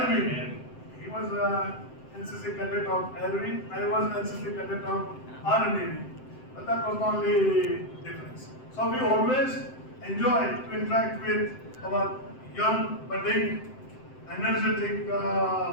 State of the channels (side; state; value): right; late; 7.7 ms